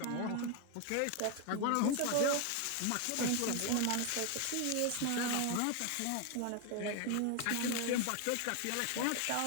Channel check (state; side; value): different; both; correlation 0.01